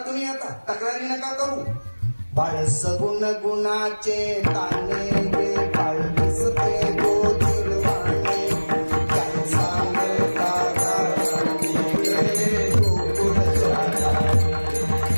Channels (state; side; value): inverted; both; correlation -1.00